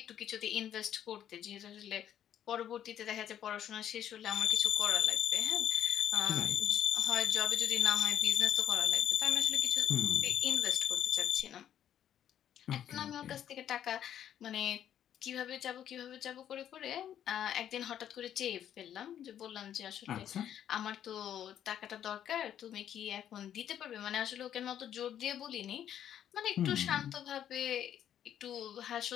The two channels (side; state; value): right; quieter; 10.3 dB